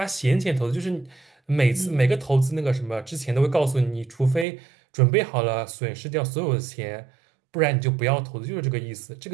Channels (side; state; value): left; drops out; at 4.5 s